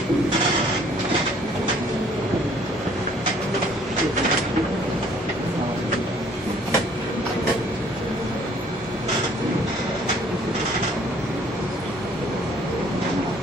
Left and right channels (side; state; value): both; normal; correlation 0.59